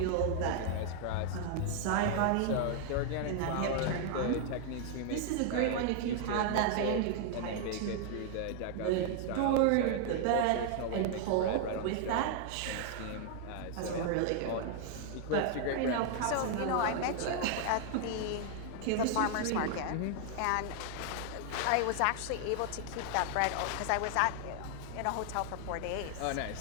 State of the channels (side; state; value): both; different; correlation 0.00